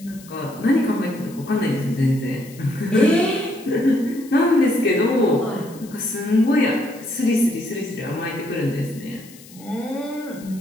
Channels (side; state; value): left; noise; hiss, 21 dB below the sound